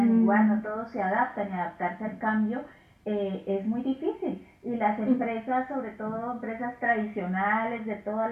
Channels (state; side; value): identical; both; correlation 1.00